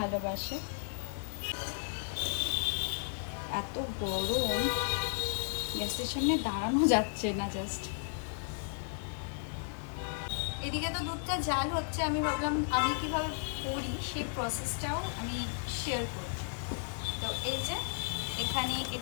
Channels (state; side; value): silent; right; digital silence